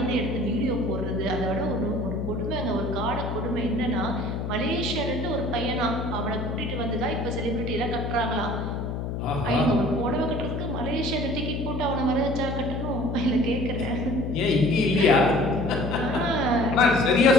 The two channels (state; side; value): noise; left; hum, 3 dB below the sound